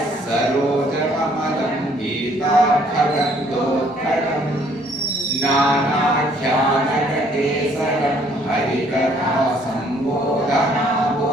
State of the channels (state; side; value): normal; both; correlation 0.62